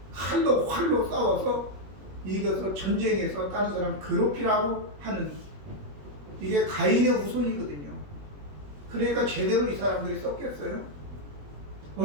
칼로 활로 싸워서 이겨서 전쟁에서 다른 사람 괴롭히라고 하는 이게 가인의 후손이거든요. 그러니까 제대로 이 사람들이 썼겠어요.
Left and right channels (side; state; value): left; late; 21 ms